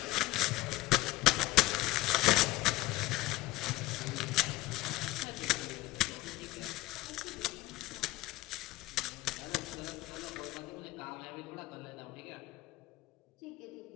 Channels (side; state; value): right; quieter; 17.7 dB